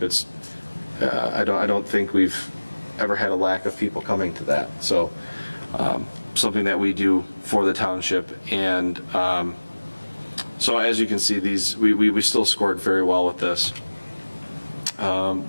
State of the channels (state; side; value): inverted; both; correlation -1.00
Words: It's, I don't think we've ever had a lack of people coming to that. So, something that we do for the township. And so as you can see, we still scored very well with this.